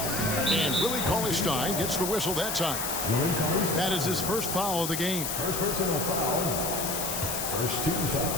And Willie Cauley-Stein gets the whistle that time. That is his first foul of the game. First personal foul First team foul.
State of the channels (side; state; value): left; noise; hiss, 3 dB below the sound